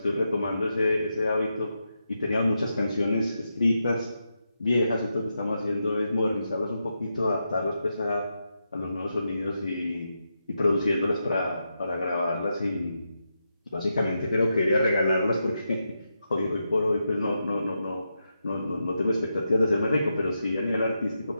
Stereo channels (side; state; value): both; inverted; correlation -0.86